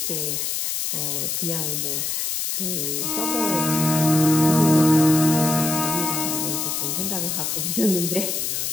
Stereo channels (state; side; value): noise; left; hiss, 1 dB below the sound